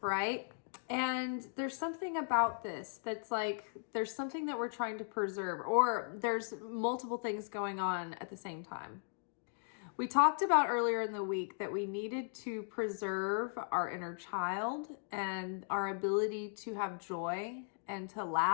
right? And there's something about this that's like, there's something that we're trying to preserve, or there's multiple things going on at the same time. We talked about earlier in the week that we needed to preserve our inner child and our ability to have joy and to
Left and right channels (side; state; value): right; silent; digital silence